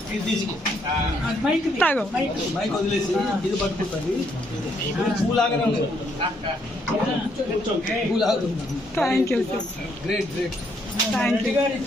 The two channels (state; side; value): normal; both; correlation 0.72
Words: మైక్ వదిలేసి ఇది పట్టుకుంటుంది. పూలాగానే ఉంది. Thank you. Great thank you.